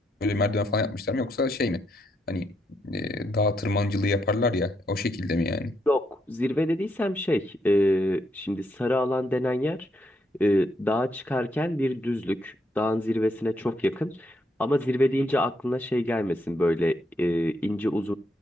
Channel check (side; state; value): both; normal; correlation 0.78